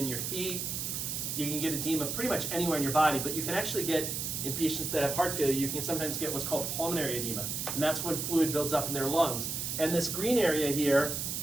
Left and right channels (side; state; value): right; noise; hiss, 3 dB below the sound